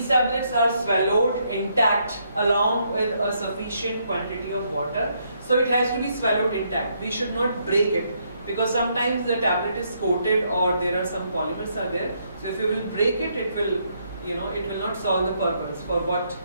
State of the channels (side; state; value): both; inverted; correlation -0.74